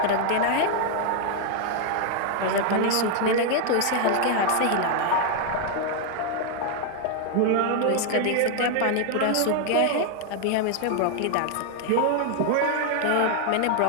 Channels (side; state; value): both; different; correlation 0.00